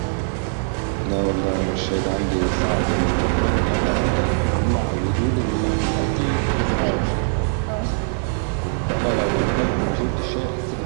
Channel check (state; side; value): silent; left; 64 dB below the other